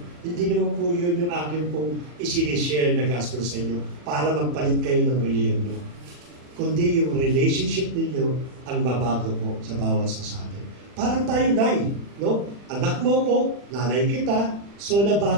Hindi naman po yun yung akin pong isinishare na gospel sa inyo para magpalit kayo ng religion nyo. Kundi yung relationship ninyo ang babago po sa bawat sa atin. Parang tayo, Nay, no? Anak mo ko, nanay kita, so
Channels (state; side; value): late; left; 40 ms